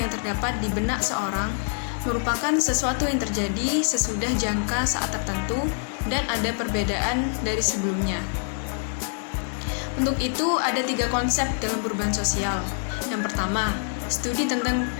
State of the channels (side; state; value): right; silent; 57 dB below the other